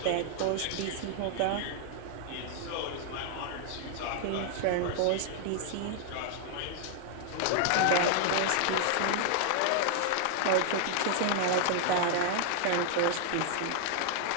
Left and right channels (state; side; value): different; both; correlation 0.00